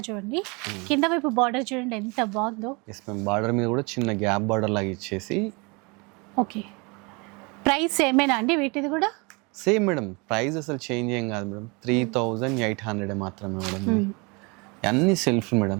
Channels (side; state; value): left; quieter; 28.9 dB